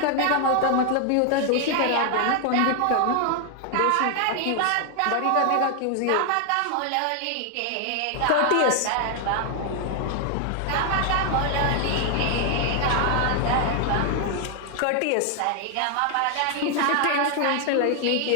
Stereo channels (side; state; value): both; different; correlation 0.00